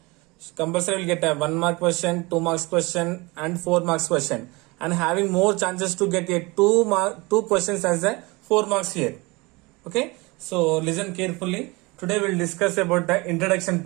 Compulsory will get a 1 mark question, 2 marks question and 4 marks question, and having more chances to get a 2 questions as a 4 marks here. Okay, so listen carefully. Today we'll discuss about the introduction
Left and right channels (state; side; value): quieter; left; 24.8 dB